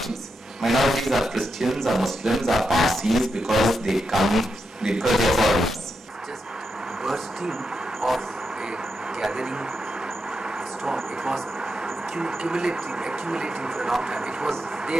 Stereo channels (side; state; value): both; normal; correlation 0.85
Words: Minorities are Christians, are Muslims, are Parsis because they are foreigners. Just bursting of a gathering storm. It was accumulating for a long time. It was